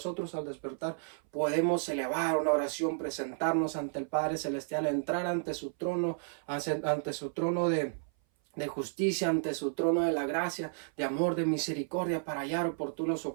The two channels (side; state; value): left; silent; 56 dB below the other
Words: al despertar podemos elevar una oración, presentarnos ante el Padre Celestial, entrar ante su trono, ante su trono de justicia, ante su trono de la gracia, de amor, de misericordia, para hallar oportuno